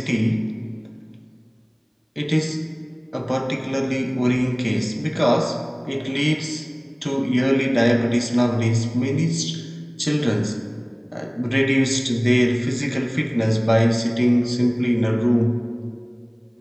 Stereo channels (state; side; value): identical; both; correlation 1.00